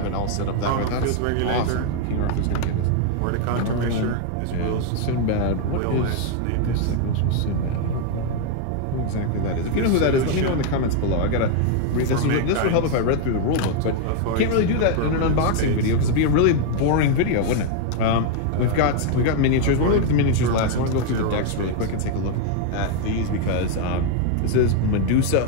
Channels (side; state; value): both; different; correlation 0.00